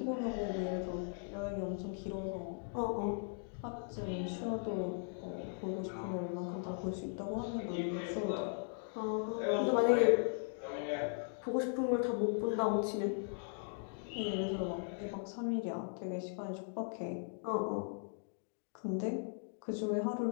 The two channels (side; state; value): right; silent; digital silence